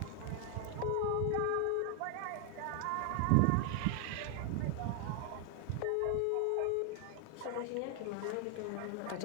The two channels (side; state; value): both; different; correlation 0.00